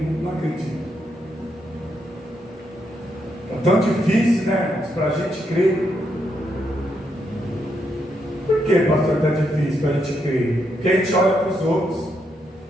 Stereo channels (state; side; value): normal; both; correlation 0.79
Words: não acredito. É tão difícil, né, para a gente crer. Por que, pastor, está difícil para a gente crer? Porque a gente olha para os outros.